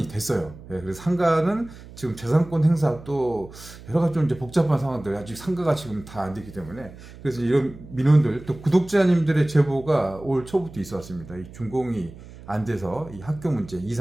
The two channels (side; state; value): right; noise; hum, 17 dB below the sound